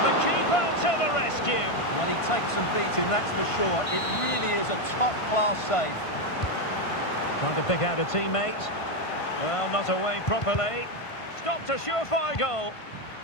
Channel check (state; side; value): late; right; 1.5 ms